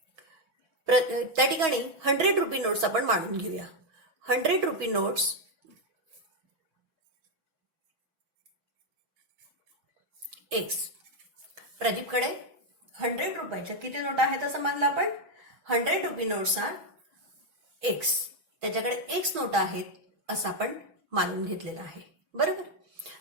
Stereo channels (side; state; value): left; late; 6.3 ms